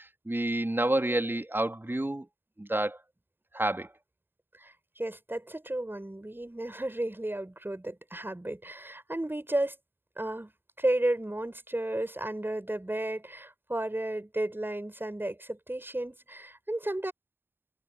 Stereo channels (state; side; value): late; left; 0.10 ms